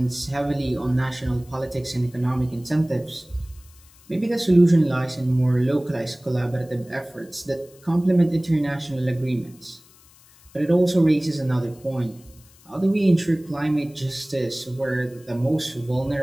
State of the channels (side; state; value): left; noise; hiss, 27 dB below the sound